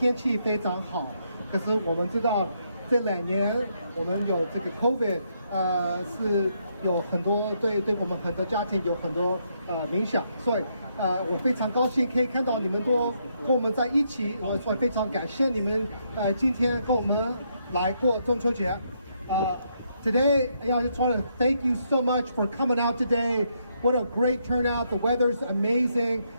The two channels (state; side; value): inverted; both; correlation -0.76